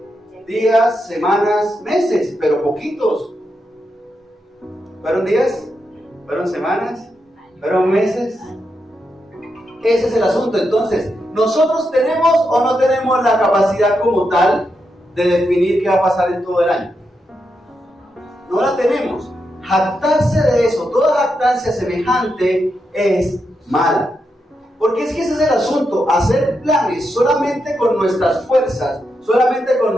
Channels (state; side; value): normal; both; correlation 0.85